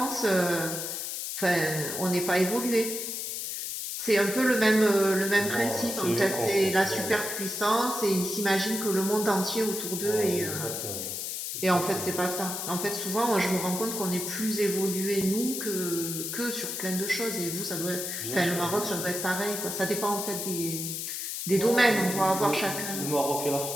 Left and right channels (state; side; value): noise; left; hiss, 4 dB below the sound